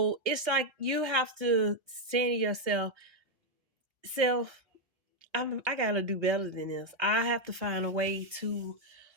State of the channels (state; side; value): late; left; 1.4 ms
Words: it's like you have to say to yourself, self, I gotta do better than this. I have to find a way to,